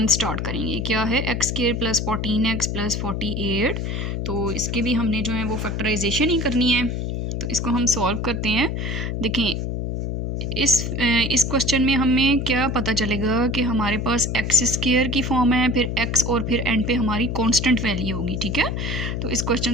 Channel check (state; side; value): noise; left; hum, 2 dB below the sound